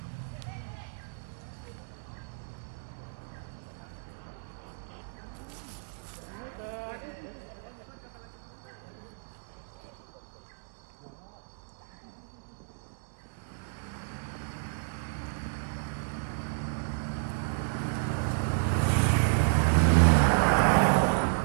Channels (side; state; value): left; silent; digital silence